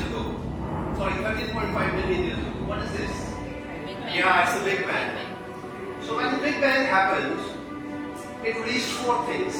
ago. Sorry, 13.5 million years ago. What is this? Yeah, it's the Big Bang. So when the Big Bang happened, it released four things:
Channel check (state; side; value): identical; both; correlation 1.00